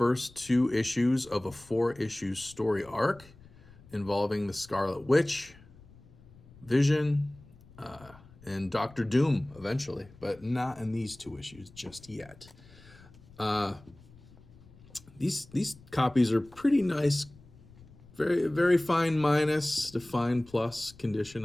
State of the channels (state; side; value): noise; left; rumble, 23 dB below the sound